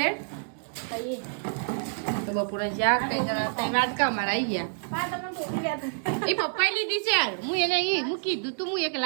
તો બપોરનું શાક કઈ જણા તઈ વાત કા મારા આવી ગયા એ પપ્પાએ લીધી છે યાર હું એને હું કીધું તું હું એક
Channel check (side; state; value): left; silent; digital silence